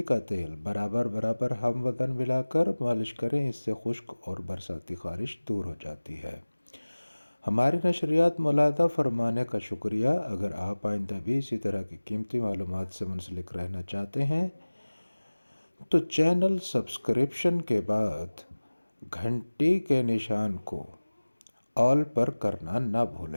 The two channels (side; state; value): both; inverted; correlation -1.00